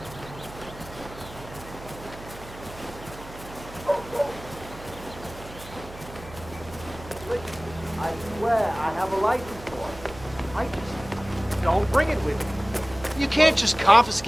Don't bring it with me. You can't just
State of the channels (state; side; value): noise; right; hum, 16 dB below the sound